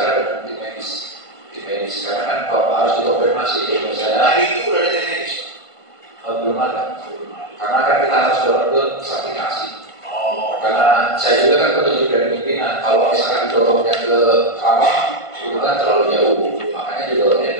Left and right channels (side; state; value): right; late; 1.5 ms